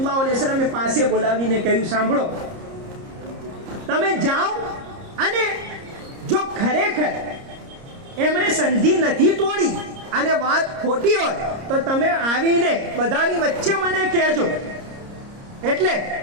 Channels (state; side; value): late; left; 30 ms